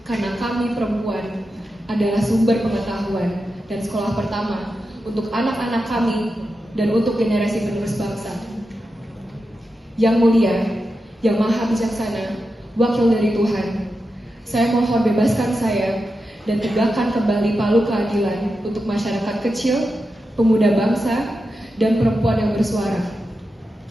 karena kami perempuan adalah sumber pengetahuan dan sekolah pertama untuk anak-anak kami dan untuk generasi penerus bangsa. Yang mulia, yang maha bijaksana, wakil dari Tuhan, saya mohon bebaskan saya dan tegakkan kembali palu keadilan untuk masyarakat kecil, pemuda bangsa, dan perempuan yang bersuara.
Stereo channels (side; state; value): both; normal; correlation 0.89